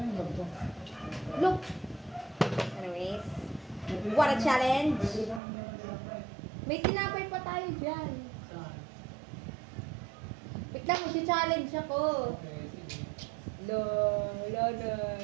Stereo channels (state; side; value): drops out; left; at 5.4 s